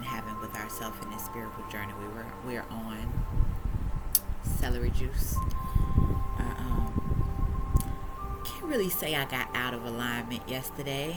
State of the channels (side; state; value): both; identical; correlation 1.00